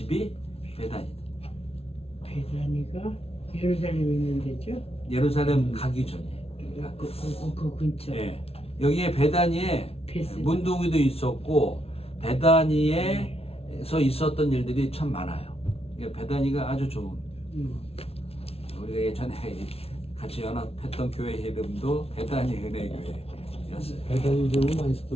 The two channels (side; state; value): right; late; 0.29 ms